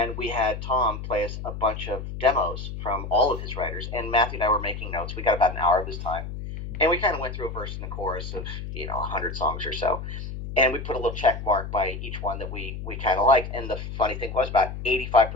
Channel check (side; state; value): left; noise; hum, 7 dB below the sound